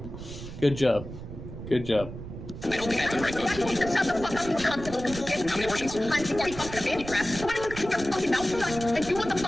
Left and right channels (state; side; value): noise; right; rumble, 11 dB below the sound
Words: Good job. Good job. I don't think I have the right vote. How many abortions? I'm already fucking a handicraft. Why don't you keep your fucking mouth shut and do what the